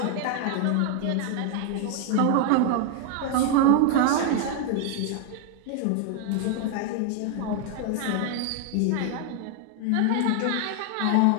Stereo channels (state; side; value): different; both; correlation 0.00